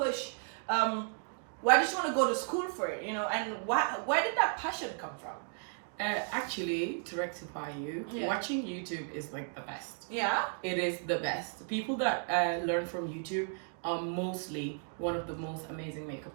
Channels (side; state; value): left; silent; 55 dB below the other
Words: why did you want to go to school for it, you know, and where did that passion come from? Actually, to rectify you, watching YouTube is like the best. It is the best. People that learn from YouTube are mostly one of the most amazing makeup